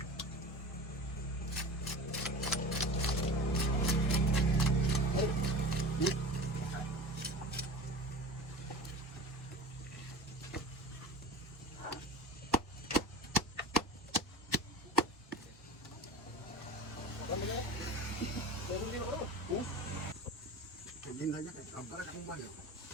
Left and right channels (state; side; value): normal; both; correlation 0.34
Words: Lindanya kan gambar kamu banyak.